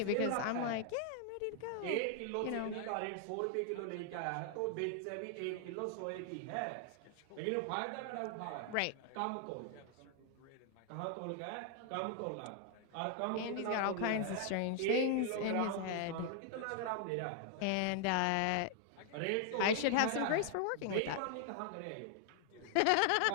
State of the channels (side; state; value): both; different; correlation 0.00